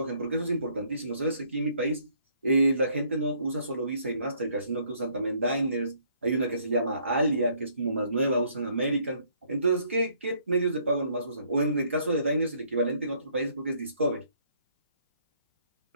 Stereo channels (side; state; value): both; inverted; correlation -0.65